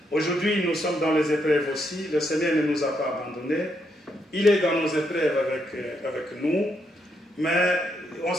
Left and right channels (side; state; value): both; normal; correlation 0.78